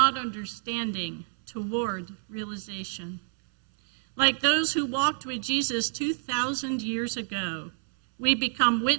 understanding toward realization. Like those who walked with Jesus 2,000 years ago, we become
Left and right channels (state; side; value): silent; left; 59 dB below the other